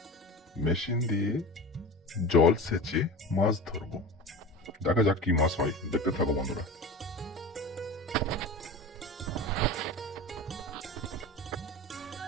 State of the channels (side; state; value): both; normal; correlation 0.32